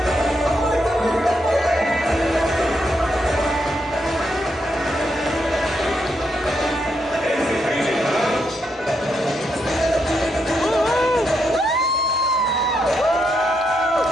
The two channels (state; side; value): normal; both; correlation 0.80